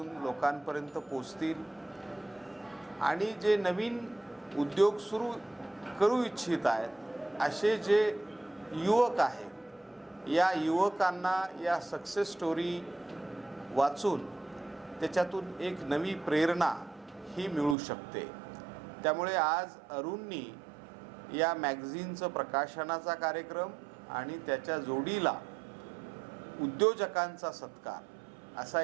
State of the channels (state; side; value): drops out; left; at 17.8 s